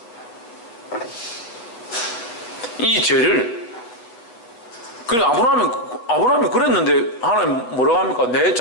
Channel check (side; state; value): right; late; 8.3 ms